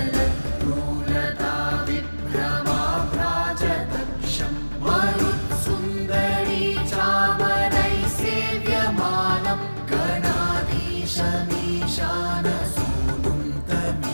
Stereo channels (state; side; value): inverted; both; correlation -1.00